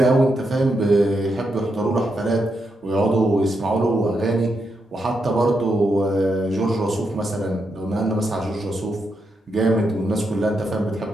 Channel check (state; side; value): normal; both; correlation 0.83